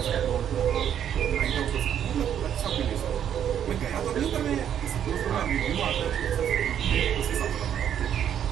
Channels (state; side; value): quieter; left; 9.5 dB